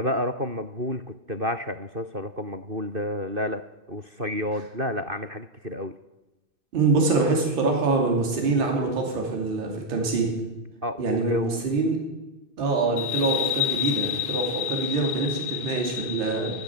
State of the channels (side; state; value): left; late; 2.6 ms